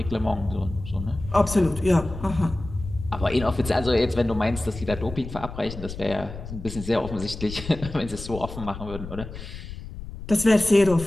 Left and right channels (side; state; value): left; noise; rumble, 11 dB below the sound